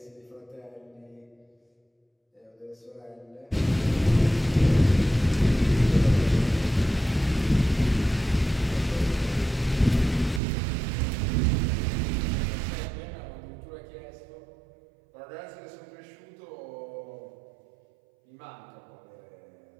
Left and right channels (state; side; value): drops out; left; at 10.4 s